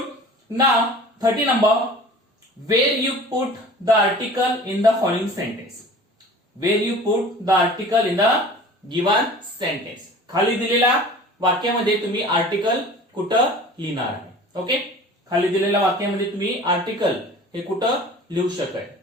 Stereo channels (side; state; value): both; normal; correlation 0.43